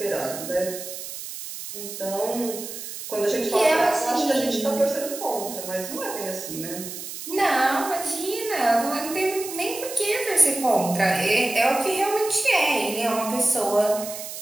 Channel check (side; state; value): right; noise; hiss, 9 dB below the sound